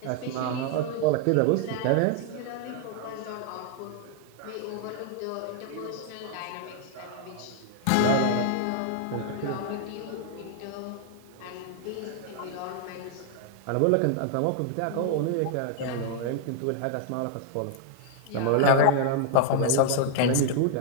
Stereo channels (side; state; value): both; different; correlation 0.00